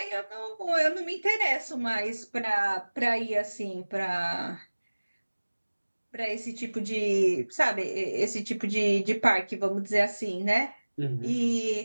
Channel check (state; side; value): inverted; both; correlation -1.00